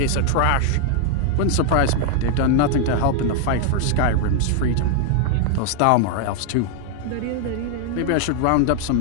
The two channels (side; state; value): both; different; correlation 0.00